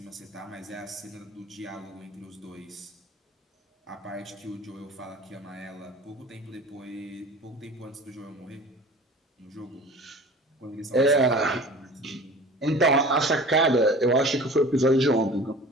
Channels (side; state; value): both; normal; correlation 0.41